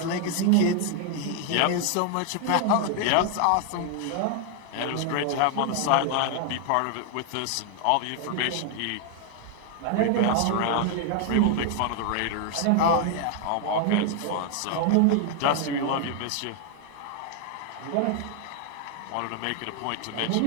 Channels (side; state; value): both; different; correlation 0.00